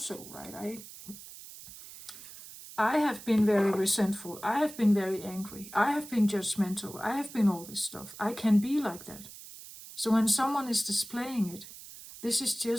right? I have been very resentful. I have been very angry. I have been judgmental. I have been all this stuff. I can be like that. So when someone is displaying it, this is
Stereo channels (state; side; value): noise; right; hiss, 15 dB below the sound